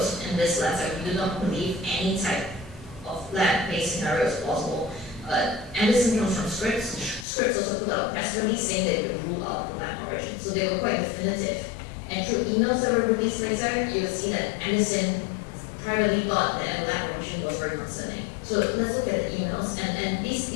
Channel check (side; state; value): right; drops out; at 7.2 s